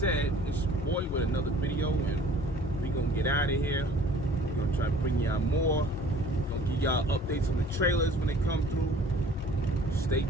it's your boy with another video, and we gonna get out of here. We're gonna try to bring y'all more. Gonna give y'all updates on the trailers when they come through. Stay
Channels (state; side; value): normal; both; correlation 0.51